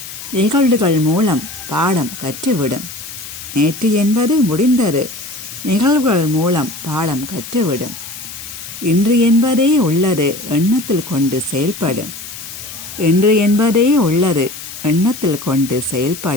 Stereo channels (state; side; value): noise; left; hiss, 12 dB below the sound